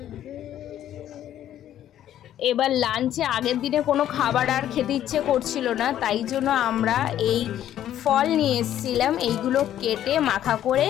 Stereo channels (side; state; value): right; quieter; 11.5 dB